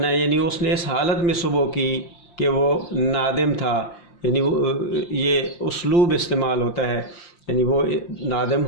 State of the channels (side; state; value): right; late; 5.8 ms